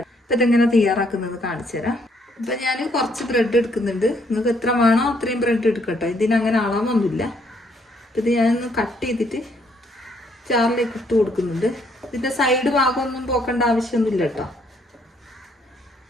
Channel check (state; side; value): normal; both; correlation 0.69